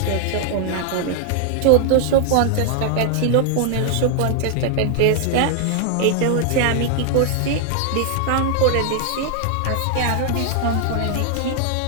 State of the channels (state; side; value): different; both; correlation 0.00